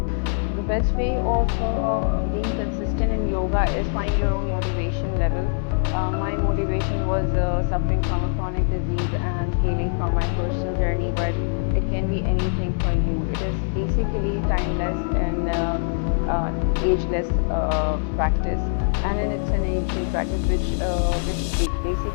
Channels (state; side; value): silent; right; digital silence